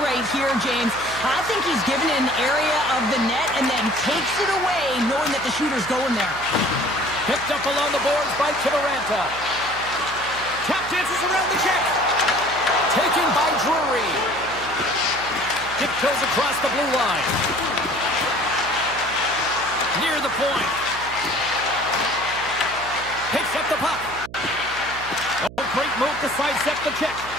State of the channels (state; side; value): noise; right; hum, 16 dB below the sound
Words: right here, James. I think he's given an area of the net and then takes it away, knowing that the shooter's going there. Picked up along the boards by Kiviranta. Tap dances around the check. Taken by Drury. Dip goes across the blue line. Near the point. Picks up the puck. Oh, great move to sidestep the check.